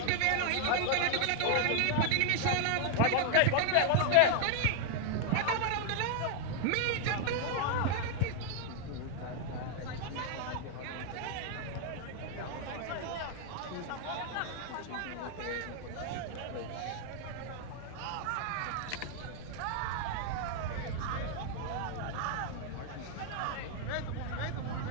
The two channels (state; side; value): different; both; correlation 0.00